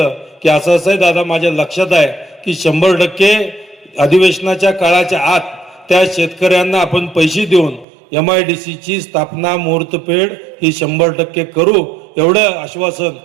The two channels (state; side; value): drops out; left; at 7.9 s